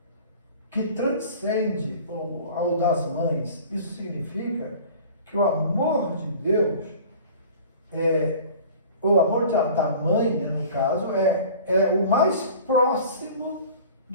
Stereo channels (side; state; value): both; inverted; correlation -0.43